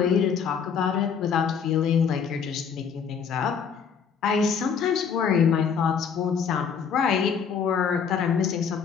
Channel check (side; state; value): right; quieter; 6.7 dB